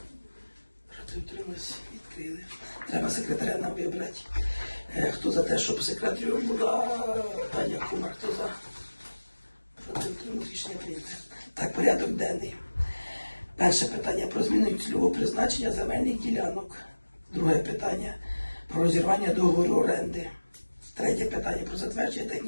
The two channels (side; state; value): both; inverted; correlation -1.00